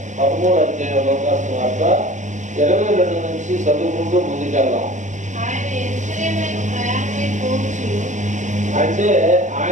13వ అధ్యాయం లూకాసు వార్త 22 నుంచి చదువుకుంటూ ముందుకెళ్దాం. అంటే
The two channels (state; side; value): late; left; 0.35 ms